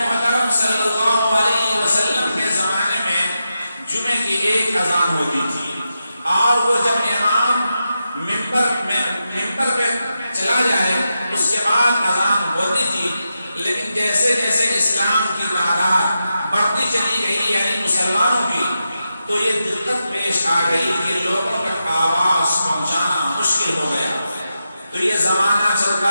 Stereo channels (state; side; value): inverted; both; correlation -0.88